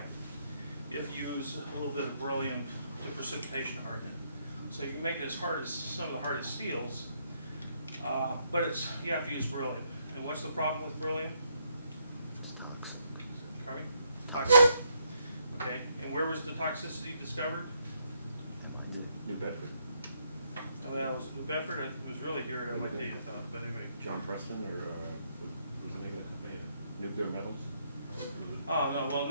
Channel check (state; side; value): inverted; both; correlation -0.74